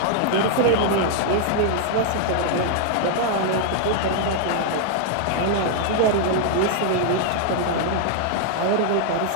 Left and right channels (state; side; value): different; both; correlation 0.00